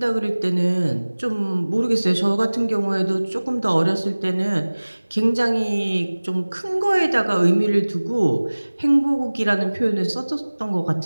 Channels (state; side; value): inverted; both; correlation -1.00